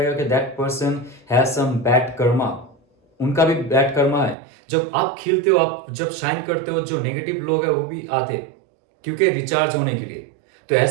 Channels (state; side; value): drops out; left; at 4.4 s